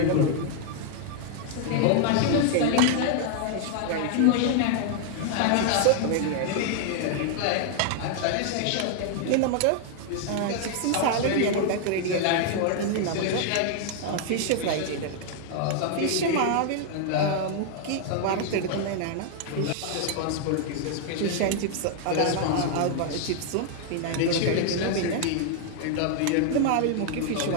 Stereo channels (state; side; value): different; both; correlation 0.00